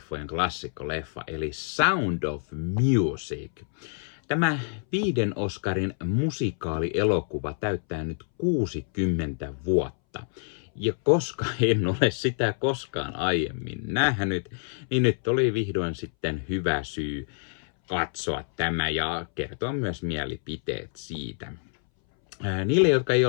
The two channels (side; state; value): right; silent; 60 dB below the other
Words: eli Sound of Music. Tämä 5 Oscarin musikaalielokuva täyttää nyt 60 vuotta. Ja koska en ole sitä koskaan aiemmin nähnyt, niin nyt oli vihdoin sitten hyvä syy katsoa tämä ja kertoa myös mielipiteet siitä. Niille, jotka ei